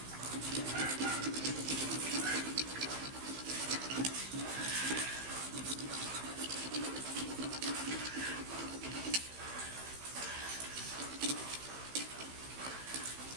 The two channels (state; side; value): late; left; 15 ms